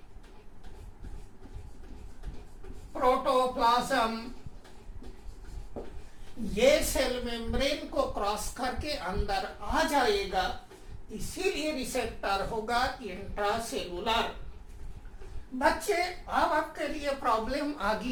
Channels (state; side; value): identical; both; correlation 1.00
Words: प्रोटोप्लाज्म, ये सेल मेम्ब्रेन को क्रॉस करके अंदर आ जाएगा, इसीलिए रिसेप्टर होगा इंट्रासेलुलर। बच्चे, अब आपके लिए प्रॉब्लम आ